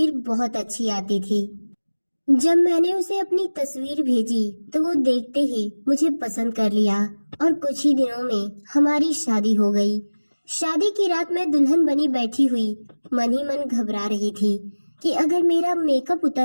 बहुत अच्छी आती थी। जब मैंने उसे अपनी तस्वीर भेजी तो वो देखते ही मुझे पसंद कर लिया और कुछ ही दिनों में हमारी शादी हो गई। शादी की रात मैं दुल्हन बनी बैठी हुई मन ही मन घबरा रही थी कि अगर मेरा मेकअप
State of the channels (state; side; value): inverted; both; correlation -1.00